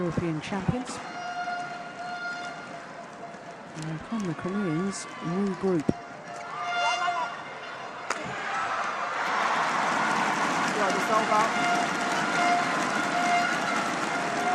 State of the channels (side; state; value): both; identical; correlation 1.00